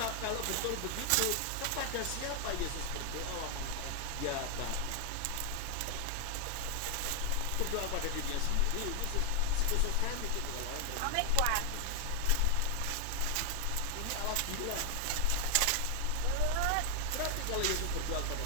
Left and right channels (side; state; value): both; different; correlation 0.00